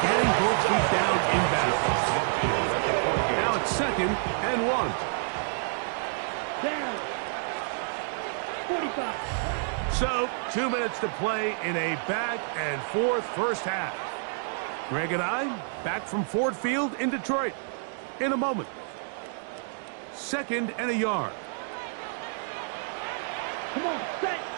getting both feet down in bounds. Now it's 2nd and 1. Down. 45. So, 2 minutes to play in a back-and-forth first half. Greg and I back from Ford Field in Detroit in a moment. 2nd and a yard. Come on, set.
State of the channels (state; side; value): silent; left; digital silence